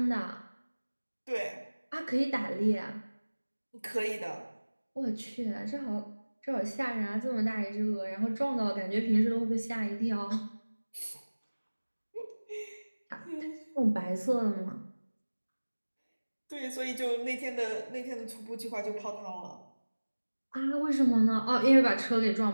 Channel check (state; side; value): inverted; both; correlation -1.00